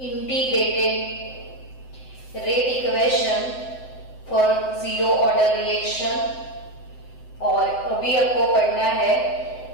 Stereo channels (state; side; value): late; right; 7.8 ms